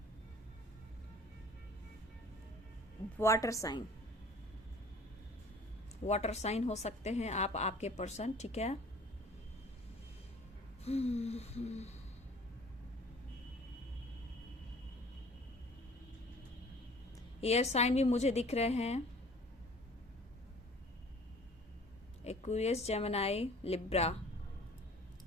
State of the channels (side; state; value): both; normal; correlation 0.49